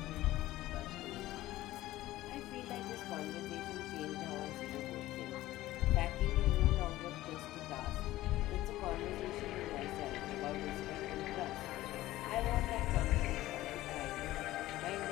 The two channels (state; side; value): quieter; right; 16.1 dB